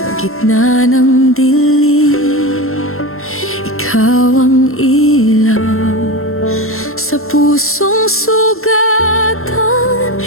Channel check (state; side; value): late; right; 0.62 ms